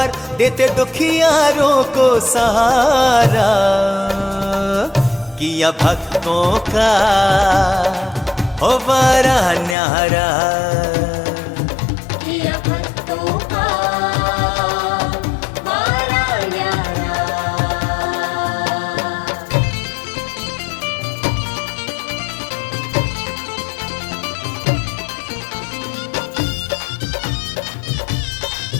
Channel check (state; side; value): drops out; right; at 9.8 s